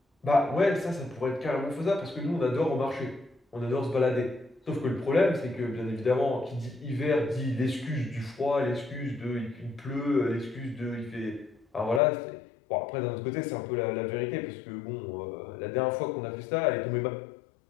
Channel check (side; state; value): right; drops out; at 12.0 s